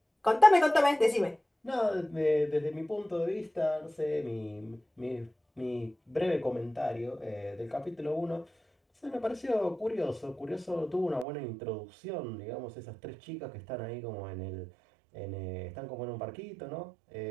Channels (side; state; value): left; drops out; at 11.2 s